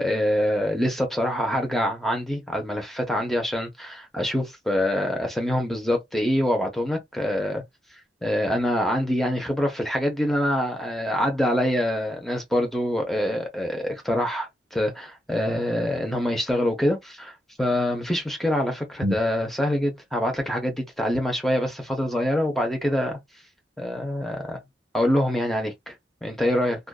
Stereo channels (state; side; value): normal; both; correlation 0.84